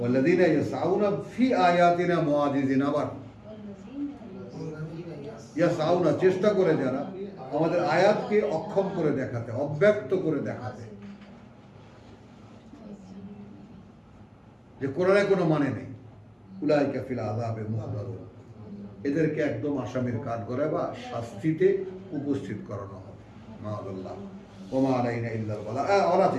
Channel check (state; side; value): identical; both; correlation 1.00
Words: ইয়াসআউনা ফি আয়াতিনা মুআজিজিন। আবার ইয়াসআউনা, চেষ্টা করে যারা আমাদের আয়াতকে অক্ষম করে দেখাতে, অব্যক্ত করে দেখাতে, যে কোরআনে কোনো মানে নেই, উলাইকা ফিল আযাবে মুহদারুন, এদেরকে একদম আসামির কাঠ করে বা শাস্তিতে উপস্থিত করানো হবে। মাআল্লাহ ওমা আলাইনা ইল্লাল বালাগ। আর